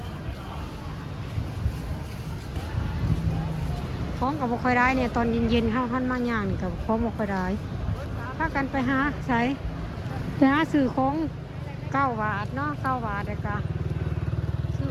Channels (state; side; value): identical; both; correlation 1.00